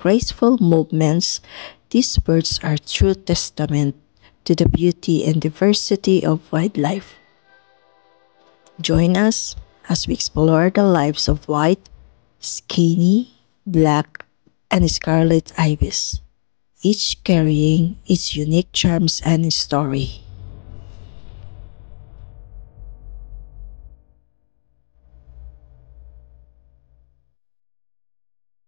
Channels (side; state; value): right; silent; digital silence